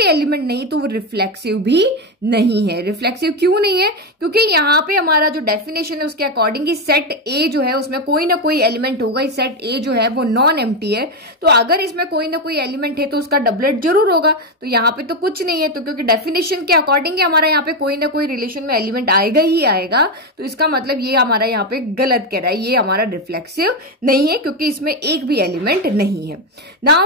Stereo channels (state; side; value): normal; both; correlation 0.09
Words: एलिमेंट नहीं तो वो रिफ्लेक्सिव भी नहीं है। रिफ्लेक्सिव क्यों नहीं है? क्योंकि यहाँ पे हमारा जो डेफिनेशन है उसके अकॉर्डिंग सेट ए जो है उसमें कोई ना कोई एलिमेंट होगा। सेट ए जो है वो नॉन एम्प्टी है, तो अगर इसमें कोई ना कोई एलिमेंट है तो उसका डबलेट जरूर होगा। तो यहाँ पे तो कुछ नहीं है, तो क्योंकि डेफिनेशन के अकॉर्डिंग हमारा यहाँ पे कोई ना कोई रिलेशन में एलिमेंट आएगा ही आएगा, तो इसका मतलब ये हमारा यहाँ पे गलत कह रहा है, ये हमारा रिफ्लेक्सिव नहीं है क्योंकि इसमें एक भी एलिमेंट नहीं है।